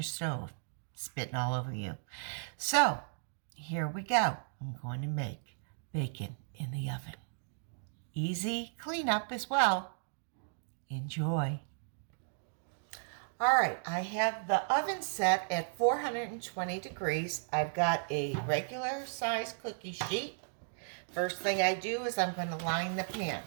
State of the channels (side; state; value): left; silent; digital silence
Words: stove, spitting all over you. So, here we go. I'm going to make bacon in the oven. Easy cleanup as well. Enjoy. All right, I have the oven set at 420 degrees. I've got a regular size cookie sheet. First thing I do is I'm going to line the pan.